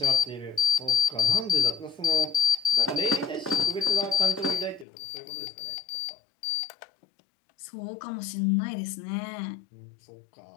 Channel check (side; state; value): right; drops out; at 4.9 s